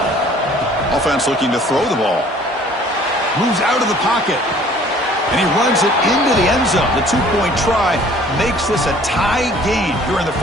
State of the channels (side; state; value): both; normal; correlation 0.53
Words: Offense looking to throw the ball. Moves out of the pocket. And he runs it into the end zone. The two-point try makes this a tie game here in the